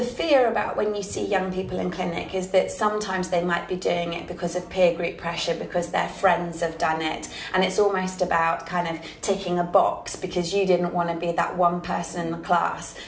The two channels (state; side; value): identical; both; correlation 1.00